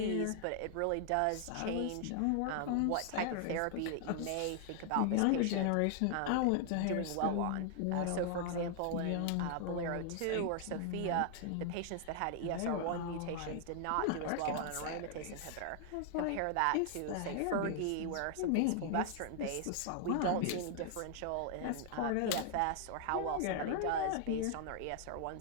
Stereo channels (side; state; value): both; different; correlation 0.00